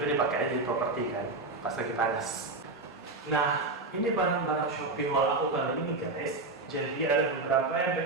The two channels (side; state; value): left; quieter; 3.4 dB